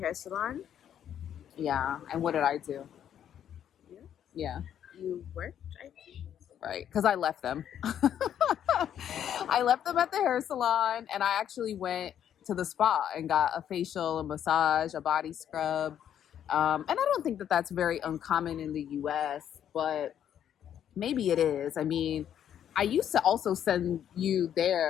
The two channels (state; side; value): quieter; right; 9.7 dB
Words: salon. Yeah, and what did I do? Yeah. Yeah, You worked, I think. right. Because I left them. I left them at the hair salon, and I actually went to the spa and got a facial, a massage, a body scrub. And I don't think that that's very uncommon in the U.S., but maybe it is. I mean, I used to also send you